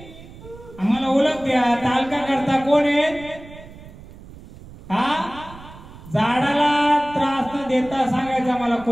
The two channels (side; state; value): right; noise; rumble, 18 dB below the sound